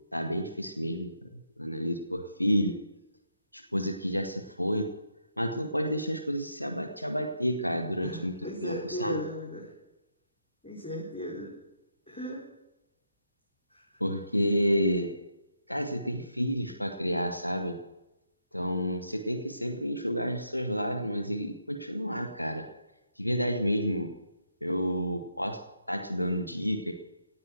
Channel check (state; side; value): inverted; both; correlation -0.79